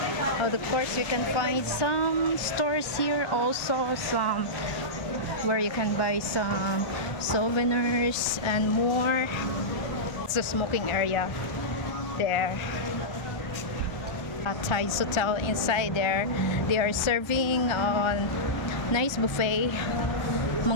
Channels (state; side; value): late; right; 1.3 ms